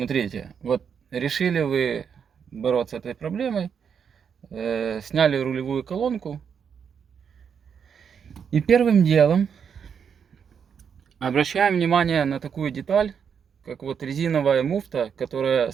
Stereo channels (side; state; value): left; quieter; 7.1 dB